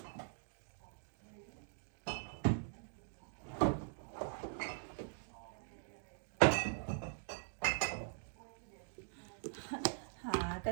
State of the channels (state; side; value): silent; left; digital silence